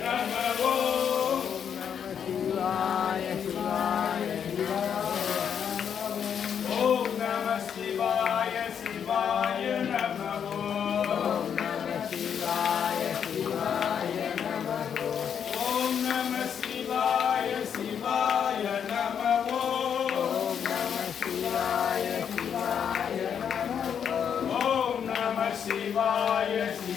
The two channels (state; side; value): quieter; right; 8.0 dB